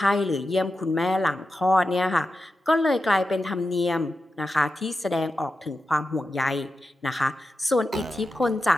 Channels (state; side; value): normal; both; correlation 0.90